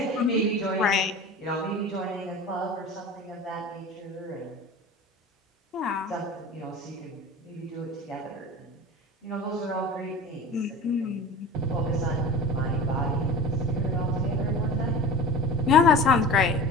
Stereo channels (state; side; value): normal; both; correlation 0.36